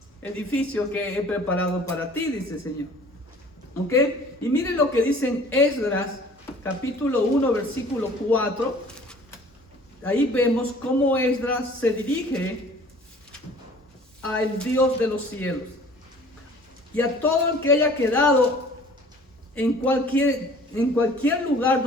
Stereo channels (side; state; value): both; normal; correlation 0.50